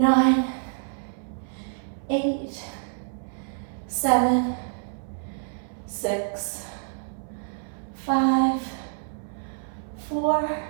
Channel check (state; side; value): silent; left; 60 dB below the other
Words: 8, 7, 6, 5, 4,